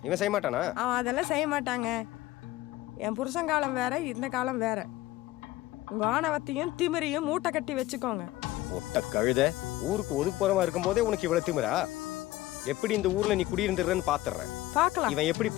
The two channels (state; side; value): quieter; right; 17.0 dB